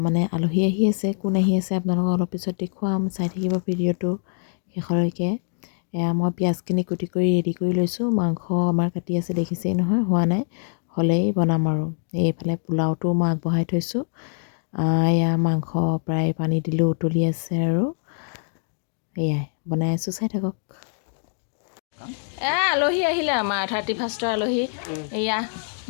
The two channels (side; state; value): right; silent; 63 dB below the other